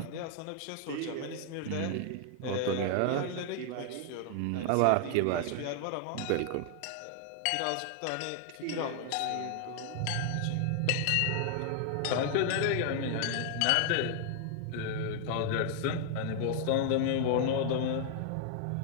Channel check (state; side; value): different; both; correlation 0.00